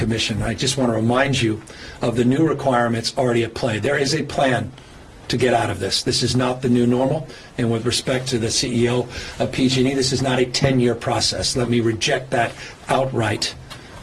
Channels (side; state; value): both; identical; correlation 1.00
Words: I just want to remind you of the new requirements already at play. There is a plan to get out of this. This is not the new normal. And with respect to the CEO of PG&E, this is not a 10-year process. Let me reject that outright,